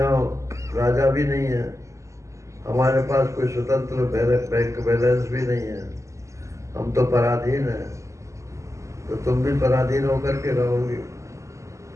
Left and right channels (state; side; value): late; left; 0.15 ms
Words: राजा भी नहीं है, हमारे पास कोई स्वतंत्र बैंक बैलेंस भी नहीं है, हम तो पराधीन हैं, तो तुम भी पराधीन होकर के रहोगी।